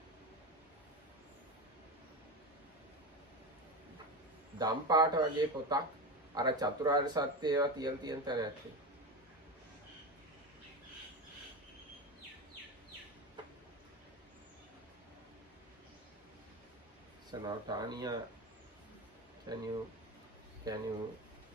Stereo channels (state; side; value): normal; both; correlation 0.21